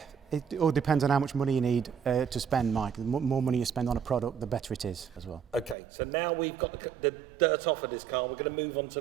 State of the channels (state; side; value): drops out; left; at 5.8 s